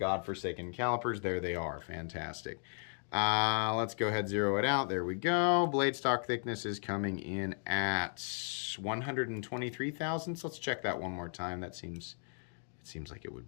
calipers, there they are. Fantastic. Let's go ahead, zero it out. There we go. Blade stock thickness is coming in at 123 thousandths. Let's check that one more time. It seems like it would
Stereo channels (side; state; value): right; silent; 54 dB below the other